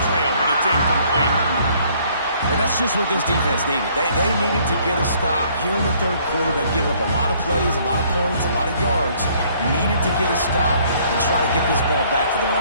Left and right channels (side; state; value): both; inverted; correlation -0.62